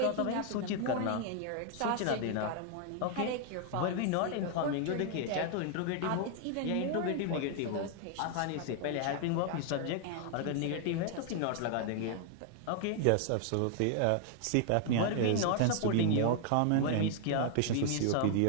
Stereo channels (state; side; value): different; both; correlation 0.00